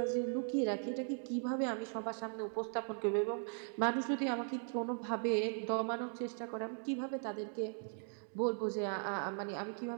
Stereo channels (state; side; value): silent; left; 52 dB below the other